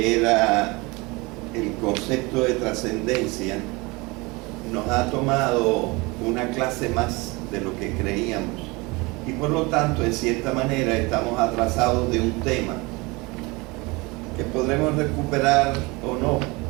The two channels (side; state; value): left; quieter; 25.0 dB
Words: era el concepto de trascendencia, nos ha tomado una clase más de lo que creíamos, y por lo tanto, en cierta manera, estamos atrasados de un tema que podremos recuperar o no.